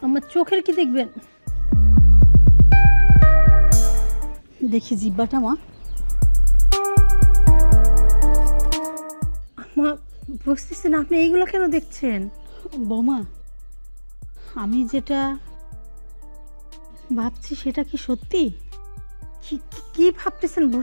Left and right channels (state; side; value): inverted; both; correlation -1.00